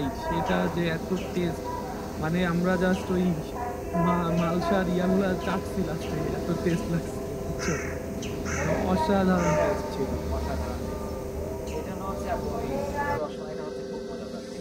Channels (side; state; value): both; identical; correlation 1.00